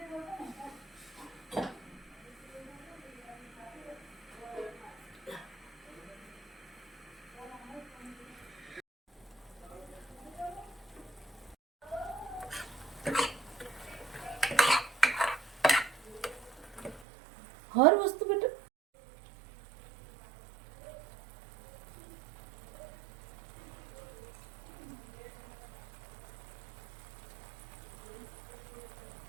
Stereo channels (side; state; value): left; drops out; at 17.1 s